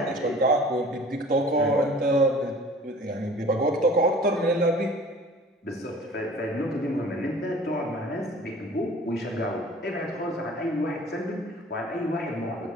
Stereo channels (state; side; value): normal; both; correlation 0.47